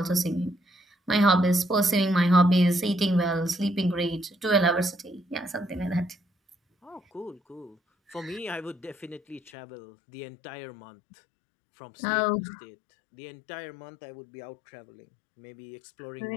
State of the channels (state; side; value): drops out; right; at 9.5 s